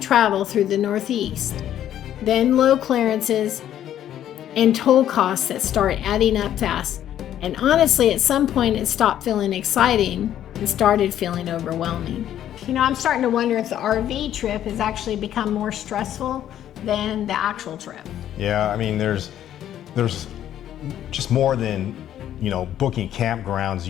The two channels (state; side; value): quieter; right; 11.2 dB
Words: through the Northeast, then low clearances and toll costs that start adding up fast. And honestly, at some point it stopped feeling exciting and started feeling overwhelming. You know, I'm starting to wonder if the RV trip has actually become more stressful than the actual trip. Yeah, I mean, there's just more than, you know, booking campgrounds